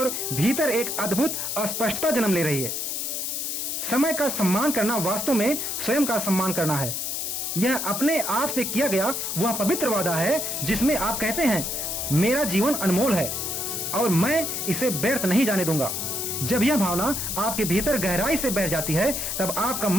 भीतर एक अद्भुत स्पष्टता जन्म ले रही है। समय का सम्मान करना वास्तव में स्वयं का सम्मान करना है। यह अपने आप से किया गया वह पवित्र वादा है जिसमें आप कहते हैं, मेरा जीवन अनमोल है और मैं इसे व्यर्थ नहीं जाने दूंगा। जब यह भावना आपके भीतर गहराई से बैठ जाती है, तब आपका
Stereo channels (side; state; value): left; noise; hiss, 2 dB below the sound